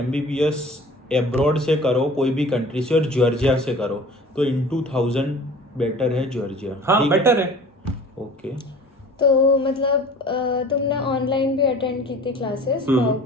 एब्रॉड से करो, कोई भी कंट्री से, और जॉर्जिया से करो, तो इन 2000 बेटर है जॉर्जिया। हाँ, बेटर है। ओके। तो मतलब तुमने ऑनलाइन भी अटेंड की थी क्लासेस भाव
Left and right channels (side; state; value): both; normal; correlation 0.44